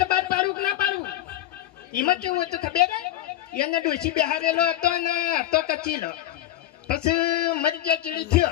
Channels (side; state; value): right; quieter; 13.4 dB